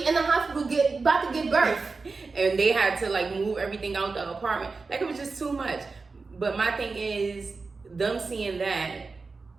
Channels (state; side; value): quieter; left; 4.2 dB